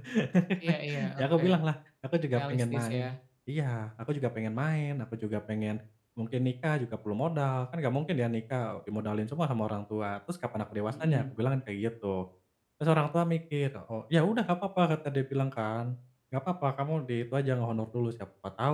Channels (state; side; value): identical; both; correlation 1.00